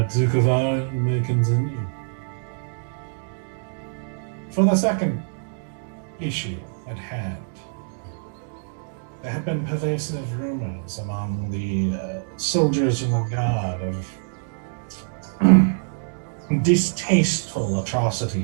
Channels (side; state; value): left; silent; digital silence